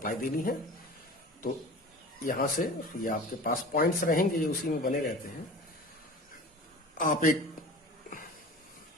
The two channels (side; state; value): both; normal; correlation 0.38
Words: देनी है, तो यहां से ये आपके पास पॉइंट्स रहेंगे, ये उसी में बने रहते हैं। आप एक